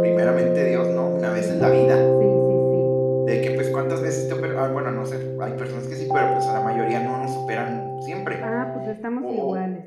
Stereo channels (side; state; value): both; identical; correlation 1.00